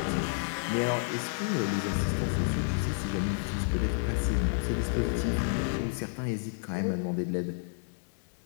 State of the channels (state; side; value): silent; right; digital silence